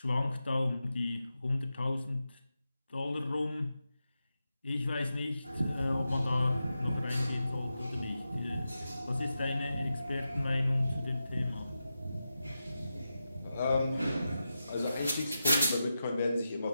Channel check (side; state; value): both; inverted; correlation -0.90